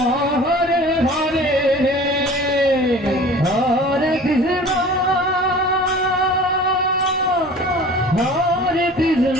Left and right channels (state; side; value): normal; both; correlation 0.43